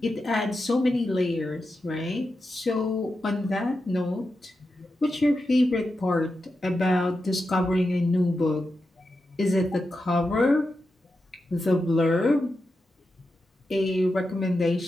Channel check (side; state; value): both; normal; correlation 0.89